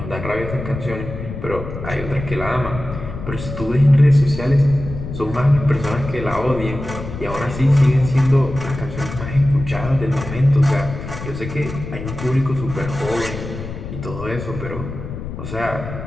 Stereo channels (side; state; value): left; noise; rumble, 9 dB below the sound